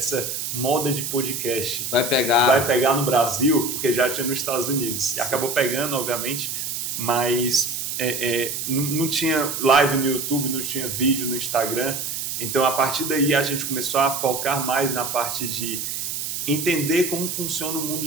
moda de podcast Vai pegar. vai pegar no Brasil? Porque já tinha nos Estados Unidos. E acabou pegando, obviamente, mas não tinha live no YouTube, não tinha vídeo no Instagram. Então, a partir daí, a gente começou a focar mais na parte de entender como funciona o mundo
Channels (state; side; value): noise; right; hiss, 4 dB below the sound